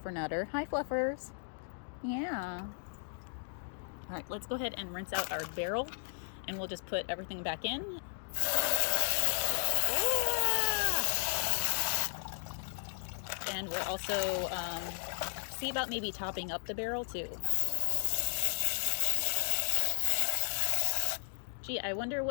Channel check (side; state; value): right; silent; digital silence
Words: Hi, Fluffers. Yeah. All right, let's go ahead and rinse out our barrel, and we'll just put everything back in. And we'll also see about maybe topping up the barrel too. Gee, I wonder